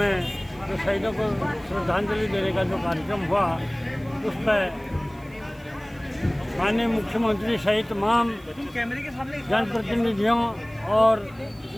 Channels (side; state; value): right; noise; hiss, 28 dB below the sound